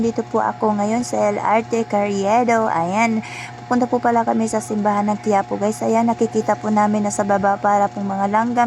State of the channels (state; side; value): identical; both; correlation 1.00